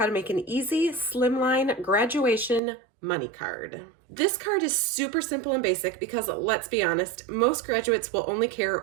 to make an easy slimline graduation money card. This card is super simple and basic because, let's be honest, most graduates will only care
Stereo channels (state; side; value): drops out; left; at 2.6 s